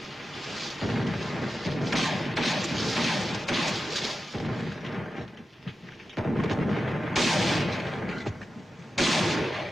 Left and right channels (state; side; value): normal; both; correlation 0.91